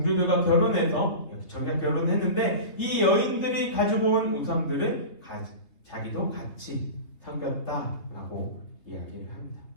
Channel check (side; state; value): right; late; 3.3 ms